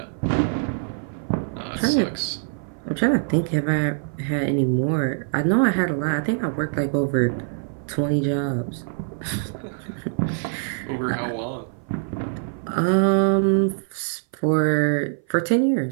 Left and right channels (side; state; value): left; silent; 57 dB below the other